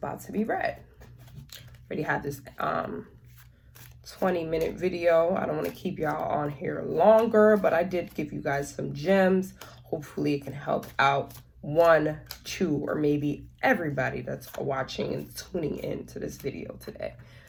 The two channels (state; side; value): identical; both; correlation 1.00